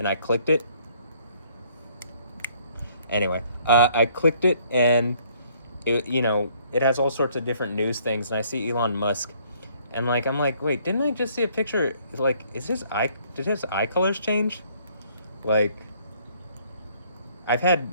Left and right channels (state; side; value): inverted; both; correlation -0.63